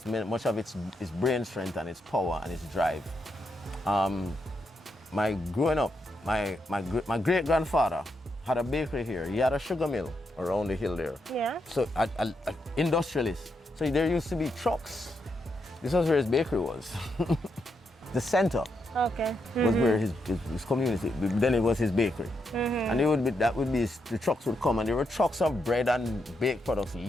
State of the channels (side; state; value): both; normal; correlation 0.82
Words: much of its brain strength and its power and its drive. My growing up, my great grandfather had a bakery here. He had a sugar mill around the hill there. Yeah. So an industrialist. So there used to be trucks. This was where his bakery was. The center Okay. was where his community. Then it was his bakery. And the trucks would come, and there were trucks of bread and baked products